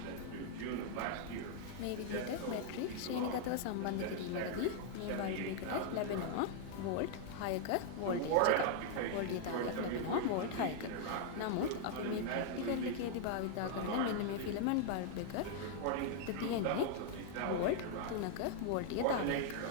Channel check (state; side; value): different; both; correlation -0.01